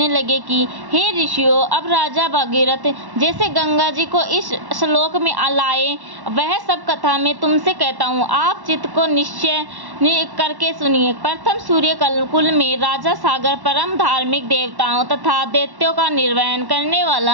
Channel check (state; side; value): late; left; 1.1 ms